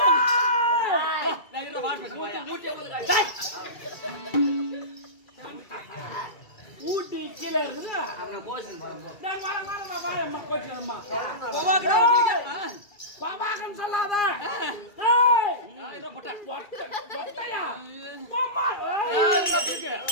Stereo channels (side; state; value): right; late; 2.3 ms